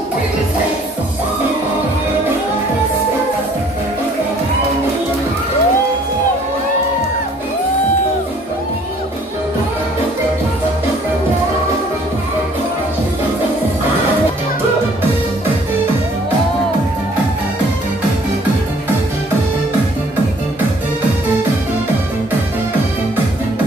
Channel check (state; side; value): normal; both; correlation 0.58